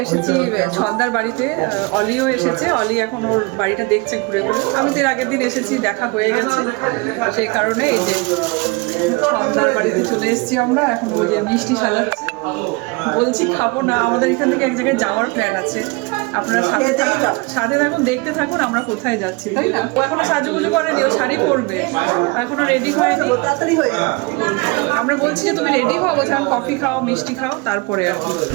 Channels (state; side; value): quieter; left; 27.0 dB